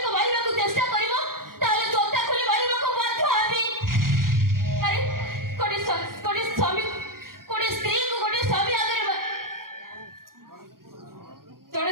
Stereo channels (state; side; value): late; left; 0.92 ms